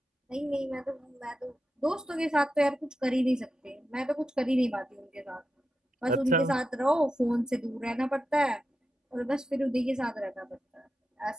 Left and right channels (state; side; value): normal; both; correlation 0.89